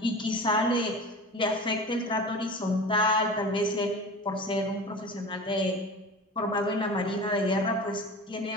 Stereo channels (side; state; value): both; normal; correlation 0.35